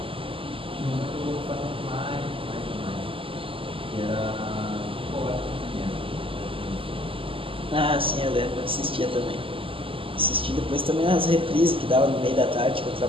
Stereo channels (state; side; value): late; left; 0.26 ms